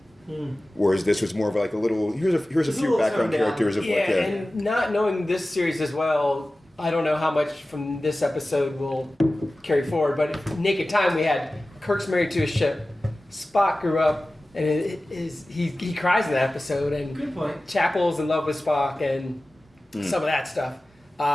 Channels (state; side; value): normal; both; correlation 0.96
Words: Whereas this was more of a little, here's a few background characters of and not knowing this series as well, I don't know how much from this episode will carry forward, but Naked Time we had Kirk's married to a ship, Spock grew up, and he cries in that episode, and Good point. Chapel's in love with Spock, and some of that stuff.